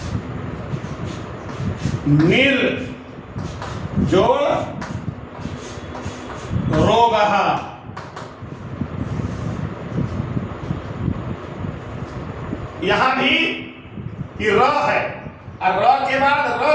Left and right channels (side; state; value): both; identical; correlation 1.00